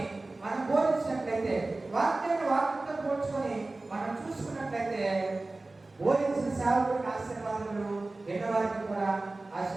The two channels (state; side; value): quieter; left; 3.1 dB